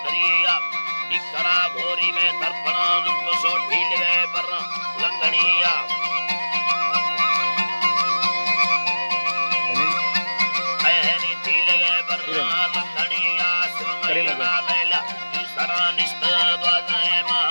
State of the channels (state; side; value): inverted; both; correlation -1.00